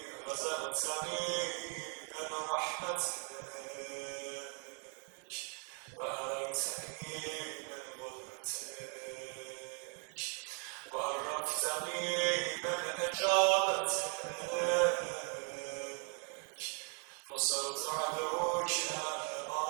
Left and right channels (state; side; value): quieter; left; 39.5 dB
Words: رزقتني من رحمتك وأريتني من قدرتك وعرفتني من إجابتك، فصرت عدوك